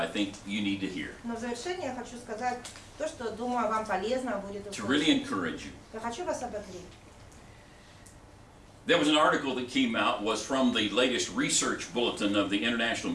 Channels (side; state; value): both; identical; correlation 1.00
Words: think you need to hear но в завершение я хочу сказать то, что, думаю, вам полезно будет to really услышать. encourage you. Я хочу вас ободрить. There was an article that came out, was from the latest research bulletin of the International